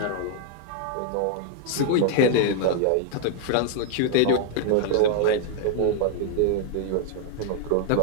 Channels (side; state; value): both; different; correlation 0.00